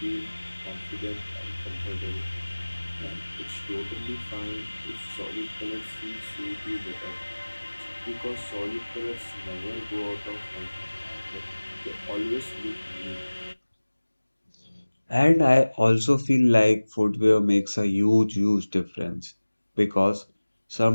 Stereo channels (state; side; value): inverted; both; correlation -1.00